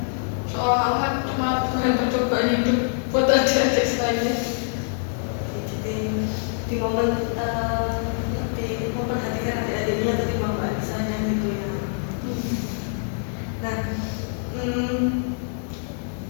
seolah-olah cuma Tuhan percobaan hidup buat adik-adik saya. Jadi di momen lebih memperhatikan adik-adiknya ketimbang Mbak Lisanya gitu ya. Nah,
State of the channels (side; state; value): right; silent; 62 dB below the other